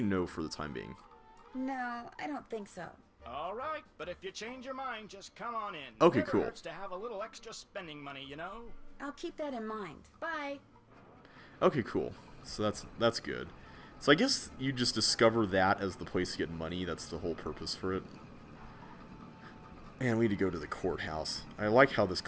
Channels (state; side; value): identical; both; correlation 1.00